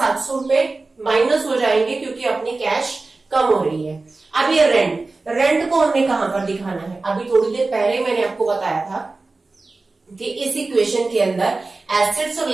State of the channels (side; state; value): left; quieter; 3.5 dB